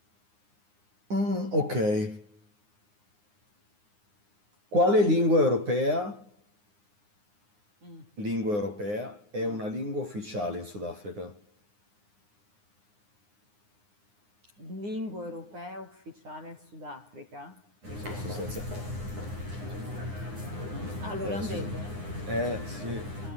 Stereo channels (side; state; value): left; late; 9.7 ms